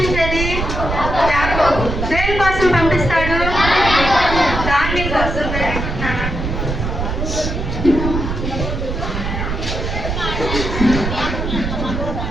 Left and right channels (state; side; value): noise; right; rumble, 3 dB below the sound